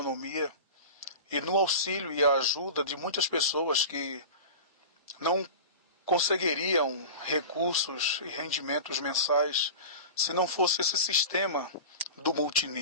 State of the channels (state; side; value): inverted; both; correlation -0.32